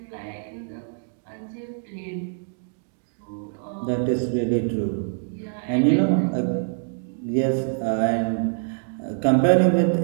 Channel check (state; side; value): silent; left; digital silence